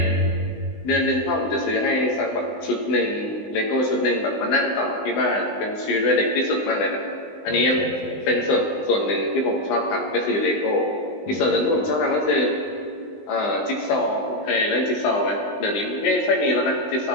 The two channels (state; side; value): late; right; 19 ms